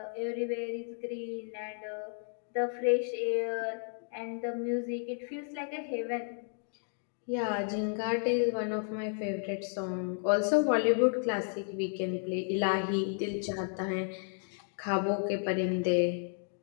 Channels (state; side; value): silent; right; 56 dB below the other